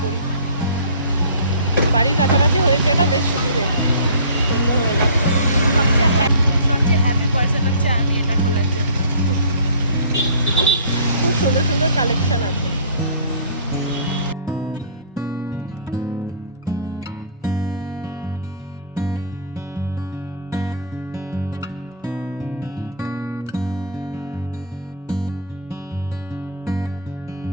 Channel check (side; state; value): both; inverted; correlation -0.43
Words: পড়ি। বাড়ির কাছাকাছি হয়েছে, এটা বেশ সুবিধে, সুন্দর হয়ে যাচ্ছে। সবচেয়ে হ্যাপি পার্সন হচ্ছে আমি এটা খোলার জন্য। খুব সুন্দর সুন্দর কালেকশন আছে।